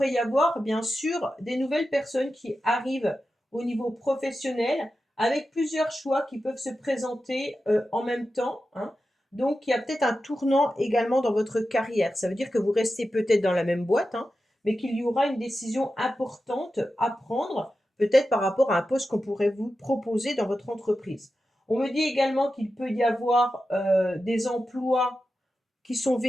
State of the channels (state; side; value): normal; both; correlation 0.91